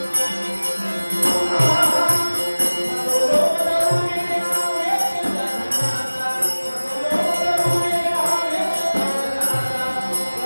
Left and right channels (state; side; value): inverted; both; correlation -1.00